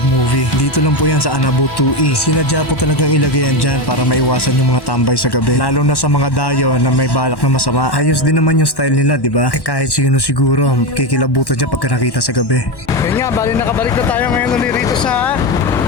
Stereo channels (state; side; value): late; right; 1.1 ms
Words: movie. Dito lang po yan sa Anabu 2E. Sinadya po talagang ilagay yan dyan para maiwasan yung mga tambay sa gabi. Lalo na sa mga dayo na may balak na masama. Ayos din naman yung style nila, di ba? Kahit sino siguro, kikilabutan dyan pagka nakita sa gabi. Yun nga, bali nakabalik na tayo ngayon ulit rito sa